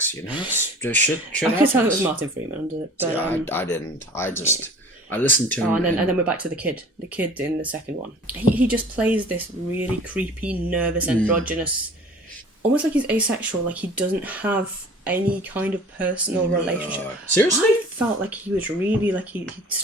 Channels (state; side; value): normal; both; correlation 0.45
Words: you know, just shit. I could tell it was Martin Freeman, but yeah, I didn't. I listened to him. And then we're back to the kid in the second one. He just plays this really creepy, nervous, androgynous, almost like he's asexual, like he doesn't have any kind of personal relationship. Seriously? I felt like he was really, like he